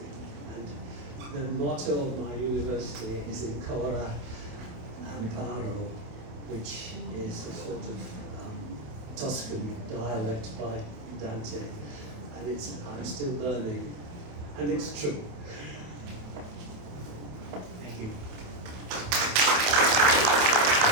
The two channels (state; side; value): late; left; 28 ms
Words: and the motto of my university is Ancora Amparo, which is a sort of Tuscan dialect by Dante, and I'm still learning, and it's true. Thank you.